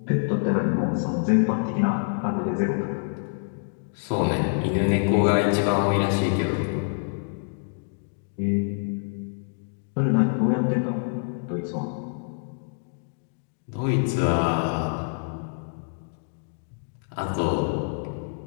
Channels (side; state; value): right; silent; digital silence